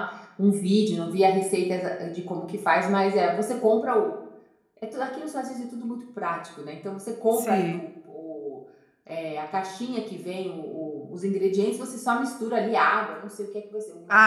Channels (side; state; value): both; identical; correlation 1.00